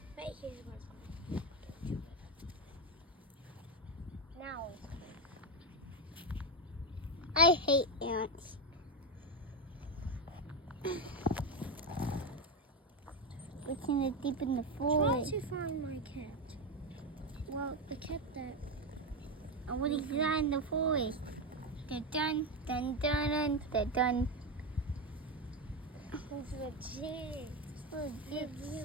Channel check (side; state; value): both; normal; correlation 0.11